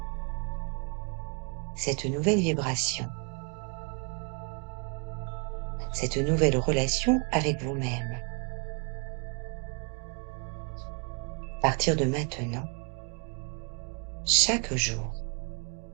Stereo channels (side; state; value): left; quieter; 35.2 dB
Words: cette nouvelle vibration, cette nouvelle relation avec vous-même. À partir de maintenant, chaque jour,